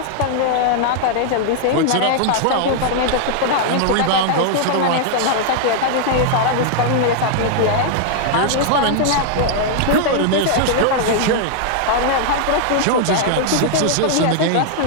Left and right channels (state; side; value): different; both; correlation -0.01